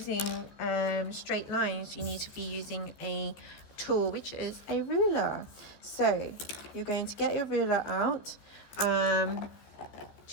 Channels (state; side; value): late; right; 14 ms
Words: straight lines, you need to be using a tool, which is a ruler. So you're going to get your ruler out